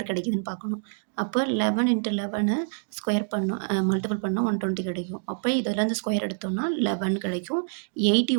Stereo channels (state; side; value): silent; left; digital silence